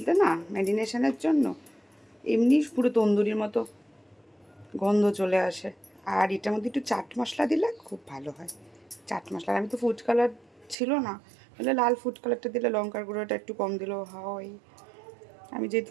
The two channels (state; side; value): drops out; left; at 10.8 s